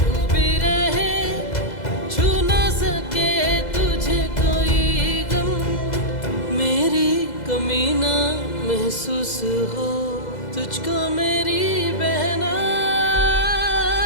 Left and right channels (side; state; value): right; late; 2.0 ms